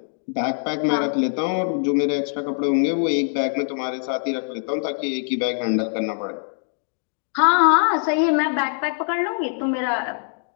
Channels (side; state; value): right; silent; digital silence